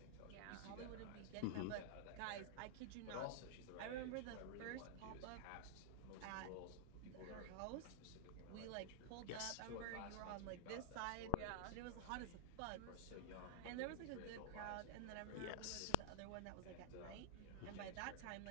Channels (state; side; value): different; both; correlation -0.01